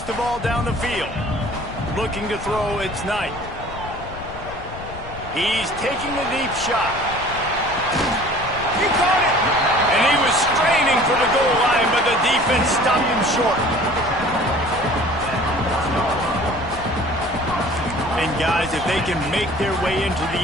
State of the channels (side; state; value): left; noise; rumble, 13 dB below the sound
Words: the ball down the field. Looking to throw, it's Knight. He's taking a deep shot. He caught it! And he was straining for the goal line, but the defense stopped him short. And guys, if they can make their way into